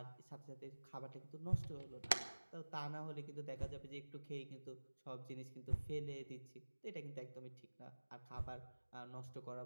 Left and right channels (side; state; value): both; inverted; correlation -1.00